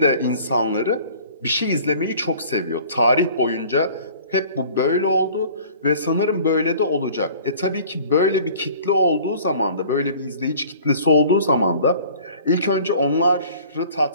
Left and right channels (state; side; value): inverted; both; correlation -0.49